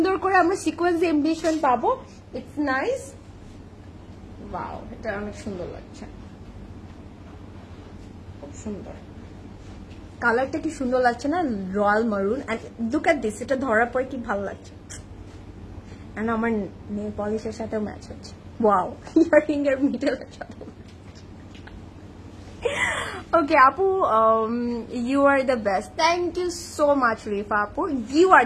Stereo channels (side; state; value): both; identical; correlation 1.00